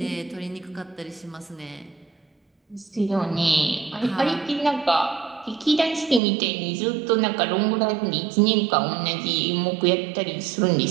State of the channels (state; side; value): drops out; left; at 6.2 s